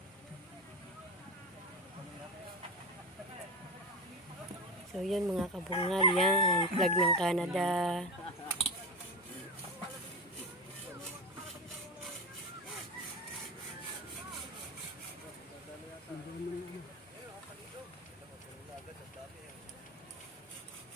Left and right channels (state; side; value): normal; both; correlation 0.20